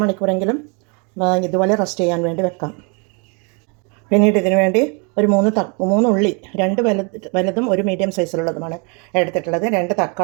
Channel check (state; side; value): quieter; left; 34.1 dB